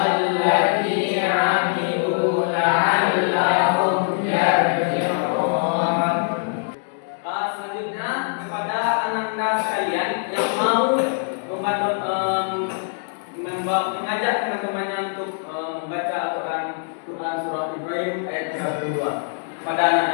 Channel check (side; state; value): right; silent; digital silence